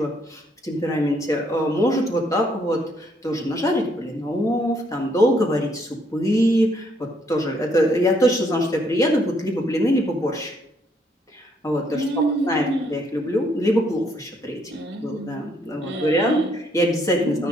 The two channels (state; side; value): normal; both; correlation 0.70